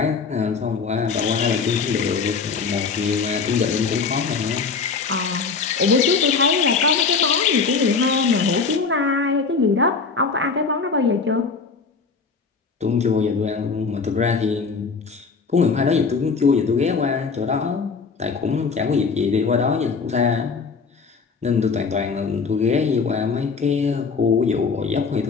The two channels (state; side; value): quieter; right; 5.0 dB